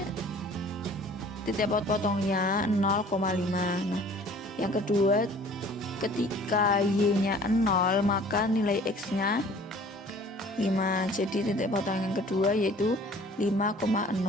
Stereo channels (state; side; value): normal; both; correlation 0.50